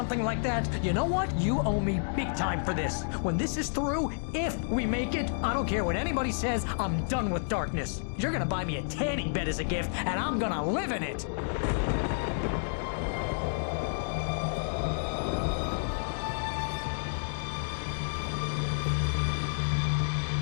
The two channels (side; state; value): right; silent; digital silence